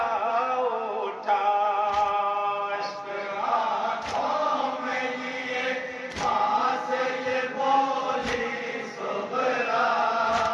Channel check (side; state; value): both; identical; correlation 1.00